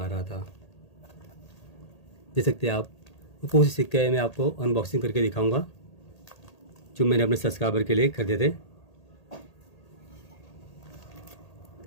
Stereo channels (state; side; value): late; right; 1.8 ms